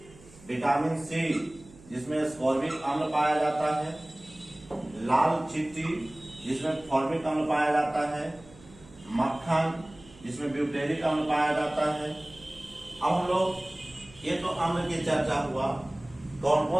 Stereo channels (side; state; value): right; noise; hum, 23 dB below the sound